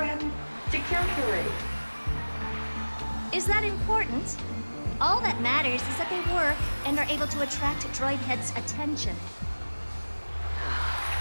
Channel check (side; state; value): both; inverted; correlation -1.00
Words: to calculate? Is that important? All that matters is that they work and are able to attract Droidhead's attention.